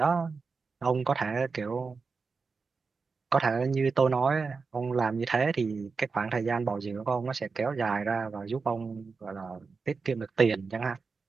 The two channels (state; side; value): quieter; left; 4.7 dB